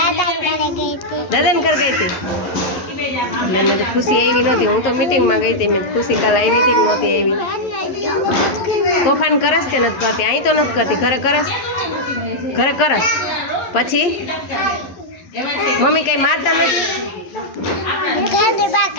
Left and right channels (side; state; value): right; late; 11 ms